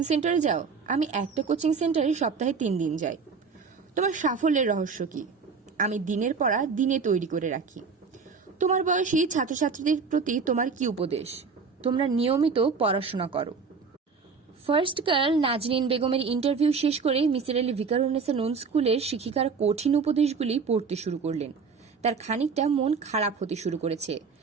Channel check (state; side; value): quieter; left; 5.2 dB